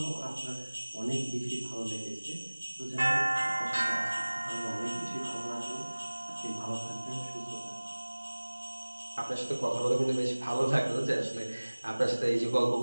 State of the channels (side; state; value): both; inverted; correlation -1.00